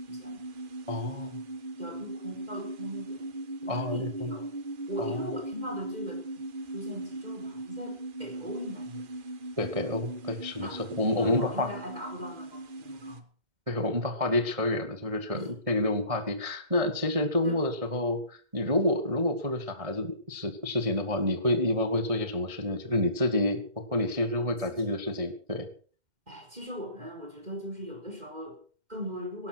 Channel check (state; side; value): late; left; 2.1 ms